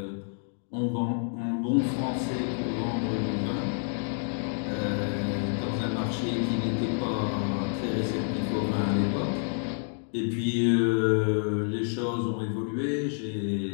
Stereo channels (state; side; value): silent; right; digital silence